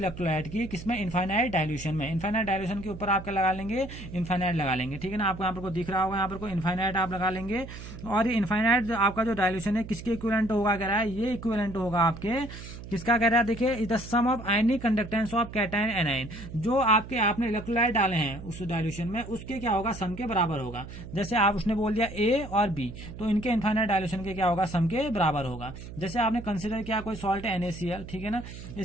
की, किसमें, इनफाइनाइट डायल्यूशन में। इनफाइनाइट डायल्यूशन के ऊपर आप क्या लगा लेंगे, इनफाइनाइट लगा लेंगे, ठीक है ना। आपको यहाँ पर को दिख रहा होगा, यहाँ पर को इनफाइनाइट आप लगा लेंगे। और इनफाइनाइट आपका जो डायल्यूशन है किसके इक्विवेलेंट होगा, कह रहा है ये इक्विवेलेंट होगा आपके, किसका कह रहा है, देखिए is the sum of ionic conductance of cation anion, जो आपने इलेक्ट्रोलाइट डाले हैं उस डायल्यूशन में, उसके क्या होगा, सम के बराबर होगा। जैसे आप उसने बोल दिया ए और बी, तो इनके इनफाइनाइट डायल्यूशन के क्या होगा, सम के बराबर होगा। जैसे आपने कंसिडर किया कोई सॉल्ट NaCl, ठीक है ना,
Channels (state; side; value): noise; right; hum, 12 dB below the sound